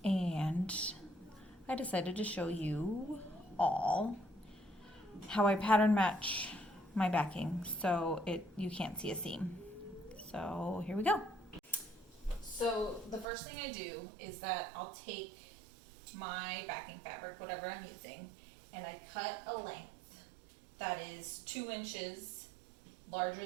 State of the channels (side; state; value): left; drops out; at 13.2 s